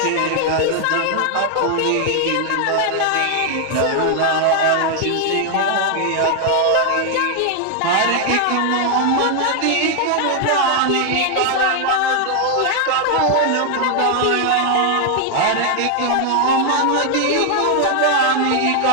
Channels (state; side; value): different; both; correlation 0.00